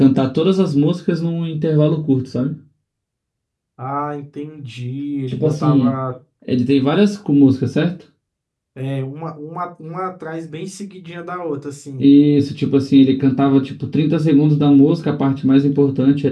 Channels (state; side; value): identical; both; correlation 1.00